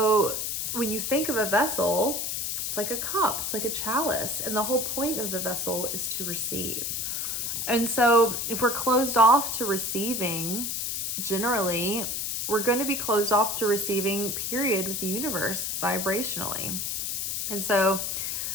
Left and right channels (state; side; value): noise; left; hiss, 2 dB below the sound